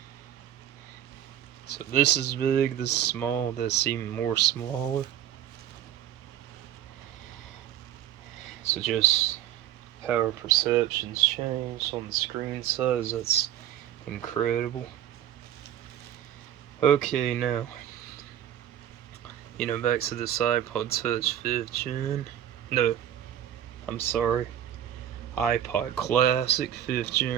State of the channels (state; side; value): quieter; left; 11.1 dB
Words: So this is big, this is small, that's even more smaller. So just how our perceptions change on the screen size, that's incredible. Okay, now, back to this iPod Touch 5th gen. No, I'm sorry. iPod Classic 5th